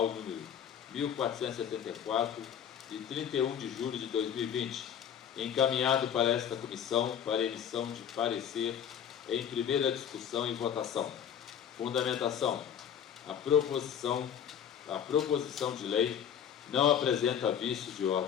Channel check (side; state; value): right; quieter; 8.8 dB